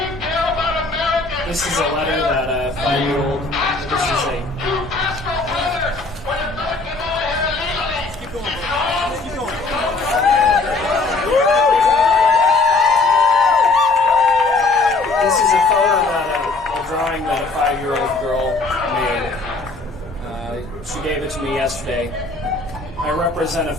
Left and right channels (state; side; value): quieter; right; 3.5 dB